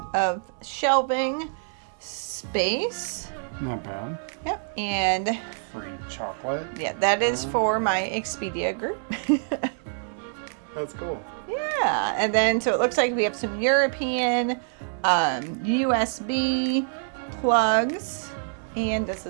of shelving space. Not bad. Yep, and Free chocolate. yeah, that is for my Expedia group. That's cool. Yeah, and then so it looks like we have some European USB plugs, and does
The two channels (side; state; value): left; silent; 61 dB below the other